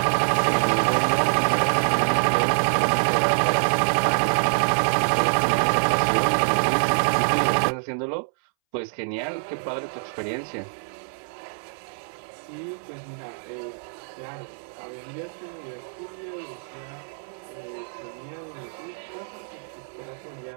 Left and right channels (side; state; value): left; silent; 62 dB below the other